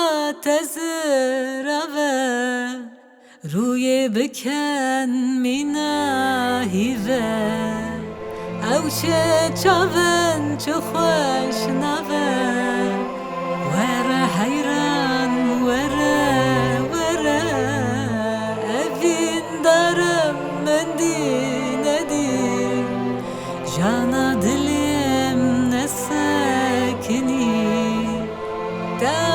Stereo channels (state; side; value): identical; both; correlation 1.00